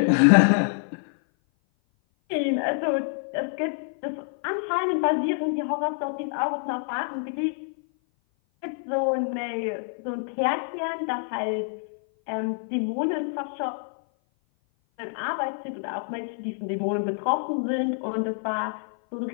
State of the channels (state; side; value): silent; right; 56 dB below the other